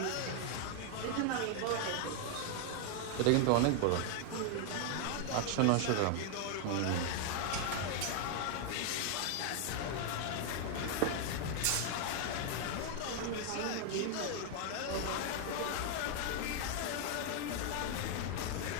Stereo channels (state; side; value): different; both; correlation 0.00